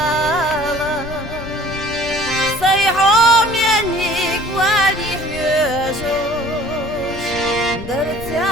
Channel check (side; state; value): left; noise; rumble, 12 dB below the sound